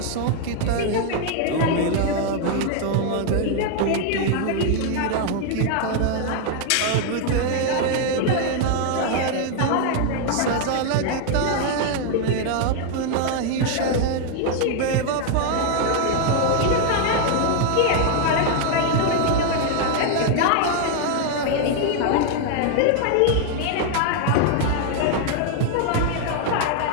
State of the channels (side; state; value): both; different; correlation 0.00